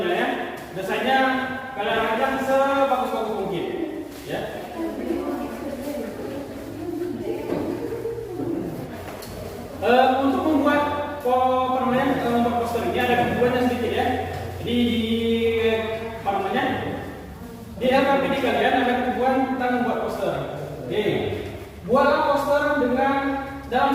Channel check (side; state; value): both; identical; correlation 1.00